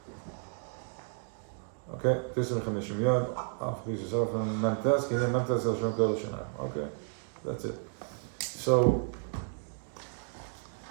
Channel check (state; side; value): silent; left; 56 dB below the other